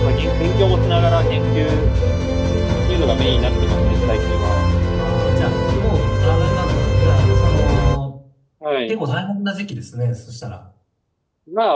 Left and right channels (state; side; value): identical; both; correlation 1.00